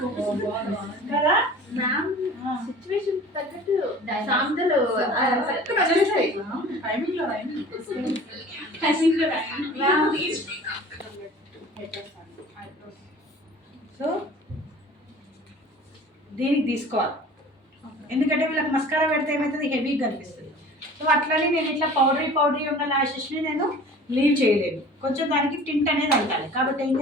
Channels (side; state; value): both; normal; correlation 0.44